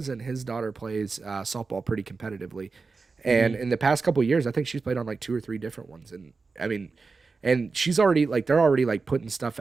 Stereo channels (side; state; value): left; quieter; 4.3 dB